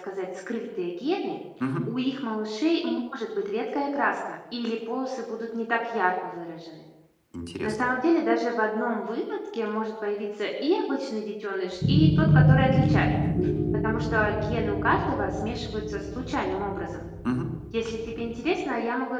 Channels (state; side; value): identical; both; correlation 1.00